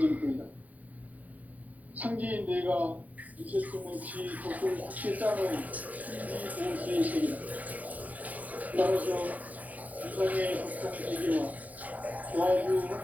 전부이다. 상제인 내가 무쇠통 없이 덕을 굳게 짜놓은 천지 도시의 세계다. 따라서 유상의 덕통 세계와 조화주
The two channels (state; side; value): late; left; 0.078 ms